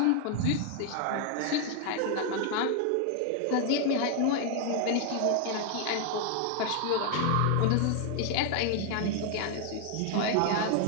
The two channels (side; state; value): both; different; correlation 0.00